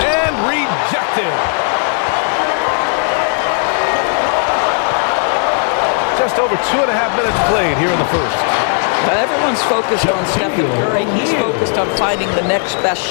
rejected. Just over 2.5 minutes played here in the first. Everyone's focused on Stephen Curry. He's focused on finding the next best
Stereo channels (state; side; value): silent; right; 56 dB below the other